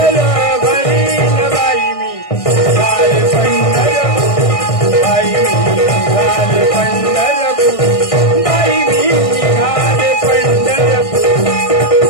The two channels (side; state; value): right; late; 1.6 ms